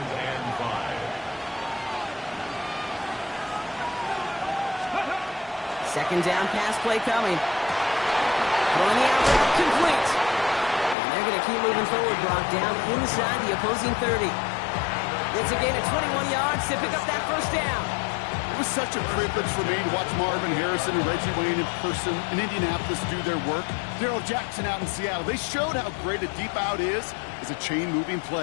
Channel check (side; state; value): right; drops out; at 11.0 s